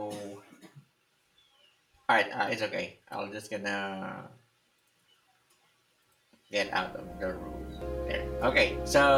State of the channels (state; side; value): identical; both; correlation 1.00